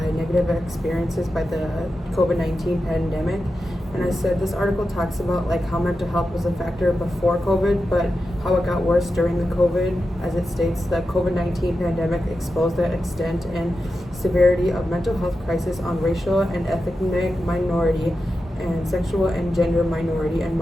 negative experiences by the COVID-19 pandemic. And I said, this article talks about like how mental health was a factor before COVID, but how it got worse during the COVID. As it states, the COVID-19 pandemic exposed the extent and severity of mental health crisis on racial and ethnic minority and sexual and gender minority and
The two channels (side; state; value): both; normal; correlation 0.90